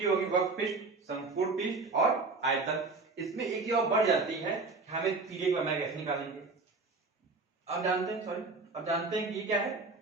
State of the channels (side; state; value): left; quieter; 3.8 dB